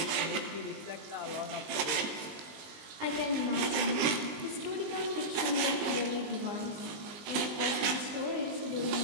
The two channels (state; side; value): late; left; 20 ms